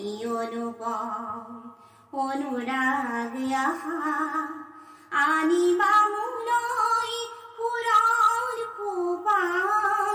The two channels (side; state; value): both; identical; correlation 1.00